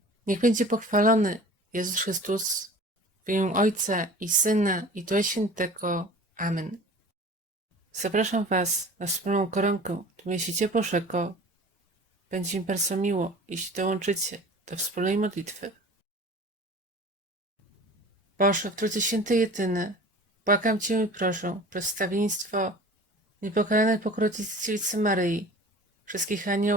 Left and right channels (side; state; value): both; normal; correlation 0.42